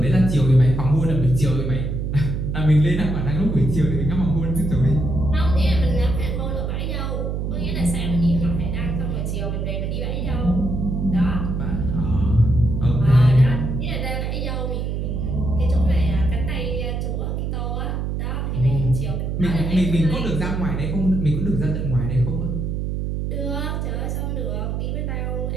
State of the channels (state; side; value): noise; right; hum, 2 dB below the sound